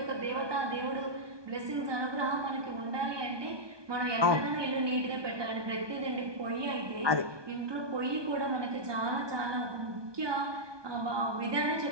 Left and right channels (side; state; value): left; late; 1.2 ms